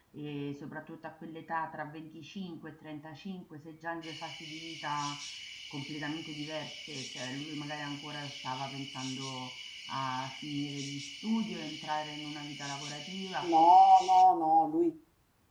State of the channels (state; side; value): identical; both; correlation 1.00